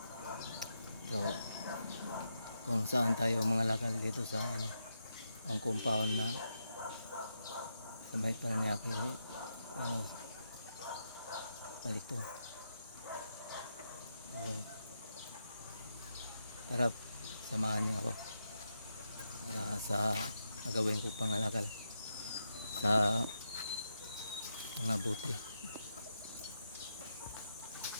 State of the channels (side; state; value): both; inverted; correlation -0.84